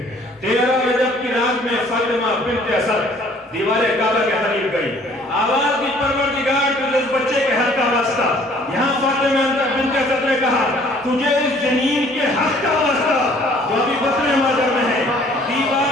13 رجب کی رات میں فاطمہ بنت اسد دیوار کعبہ کے قریب گئی، آواز دی پروردگار تجھے اس بچے کے حق کا واسطہ۔ یہاں فاطمہ بنت اسد نے کہا تجھے اس جنین کے حق کا واسطہ جو ابھی بطن مادر میں ہے۔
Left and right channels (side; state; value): both; normal; correlation 0.56